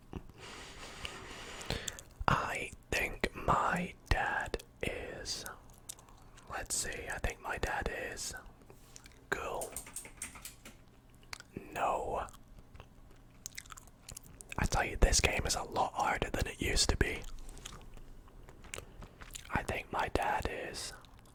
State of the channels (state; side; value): identical; both; correlation 1.00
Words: I think my dad is... Let's see, I think my dad is... Cool. No. I tell you, this game is a lot harder than it used to be. I think my dad is...